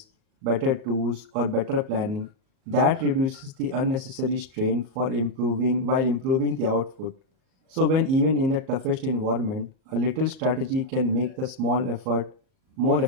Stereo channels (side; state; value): left; late; 38 ms